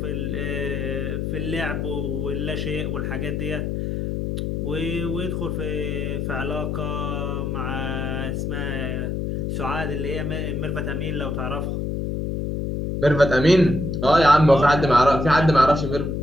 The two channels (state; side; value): noise; left; hum, 2 dB below the sound